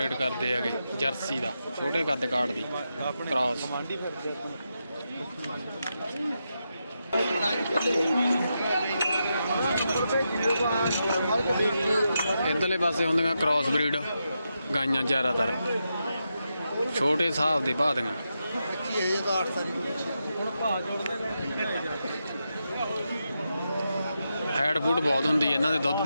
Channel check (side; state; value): both; inverted; correlation -0.86